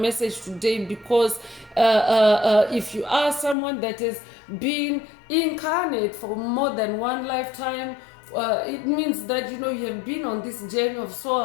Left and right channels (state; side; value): drops out; right; at 3.6 s